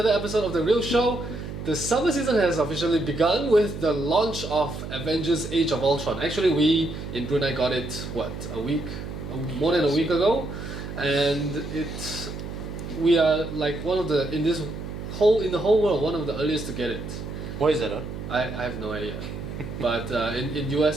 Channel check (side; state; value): right; noise; hum, 8 dB below the sound